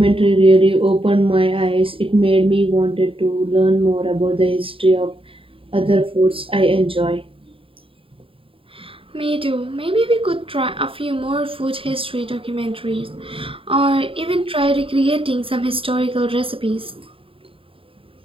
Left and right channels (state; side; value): late; left; 0.26 ms